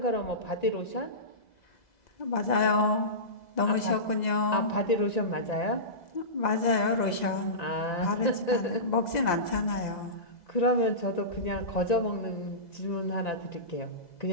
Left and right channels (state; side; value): late; right; 2.0 ms